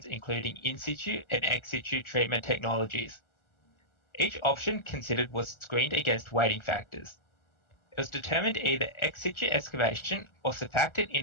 including in situ and ex situ treatment technologies. Each option considered was screened against weighting factors. It was determined either ex situ excavation or surfactant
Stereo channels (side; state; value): right; late; 1.4 ms